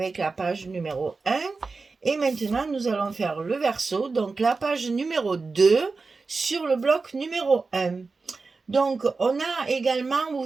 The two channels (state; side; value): quieter; left; 4.2 dB